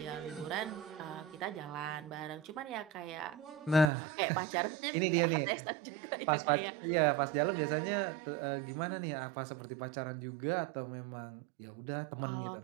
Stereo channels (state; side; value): drops out; left; at 3.9 s